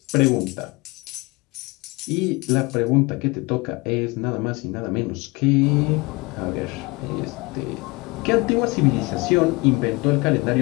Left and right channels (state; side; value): quieter; right; 25.2 dB